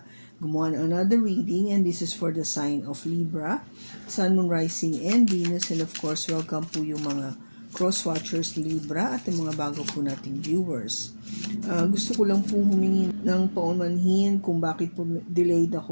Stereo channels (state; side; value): inverted; both; correlation -1.00